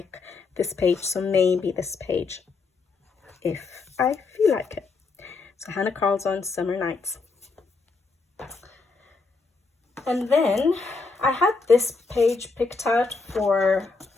this page. So maybe this page, if I feel like it. So Hannah Carlson's Summer Nights. And then I had this page picked out for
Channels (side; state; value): right; quieter; 4.3 dB